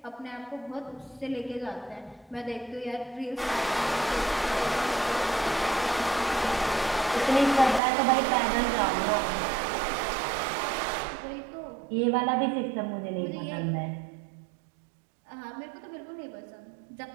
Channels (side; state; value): left; drops out; at 7.8 s